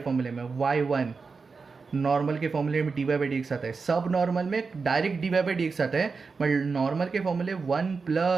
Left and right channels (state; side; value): quieter; left; 4.7 dB